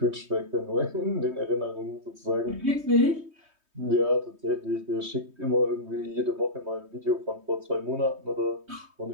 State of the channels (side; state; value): left; late; 3.2 ms